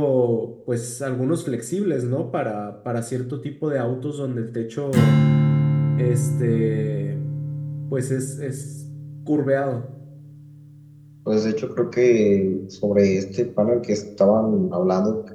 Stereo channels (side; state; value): both; identical; correlation 1.00